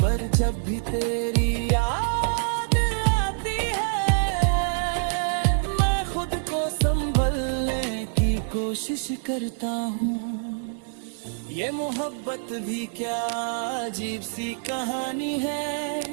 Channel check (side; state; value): left; silent; 61 dB below the other